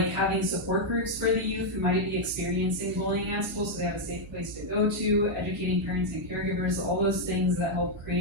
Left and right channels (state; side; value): noise; right; hum, 15 dB below the sound